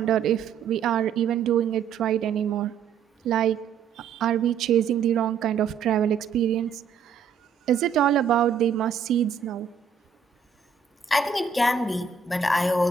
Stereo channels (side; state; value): left; quieter; 6.6 dB